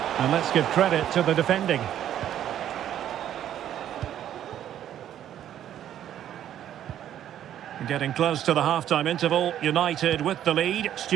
And let's give credit to the defending. Getting close to the half-time interval. United with the lead.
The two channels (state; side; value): quieter; left; 10.9 dB